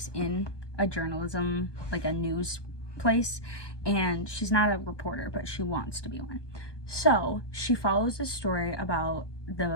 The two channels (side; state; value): right; late; 1.2 ms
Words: in a journalism, like a news place, and she's not a reporter, but she wants to be one. So she follows a story about